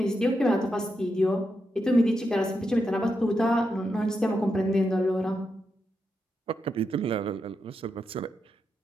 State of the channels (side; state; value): both; normal; correlation 0.85